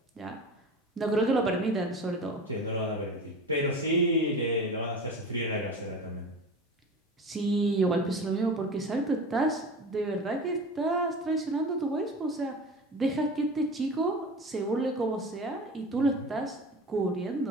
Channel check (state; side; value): normal; both; correlation 0.33